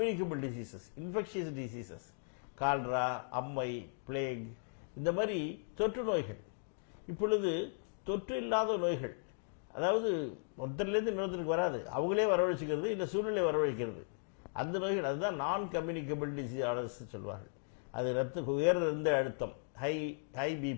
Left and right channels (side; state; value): right; silent; digital silence